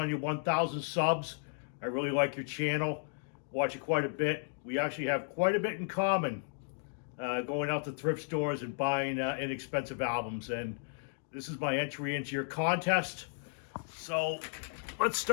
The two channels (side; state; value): right; silent; digital silence